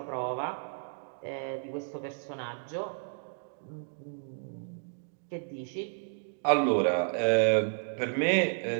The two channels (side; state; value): left; silent; digital silence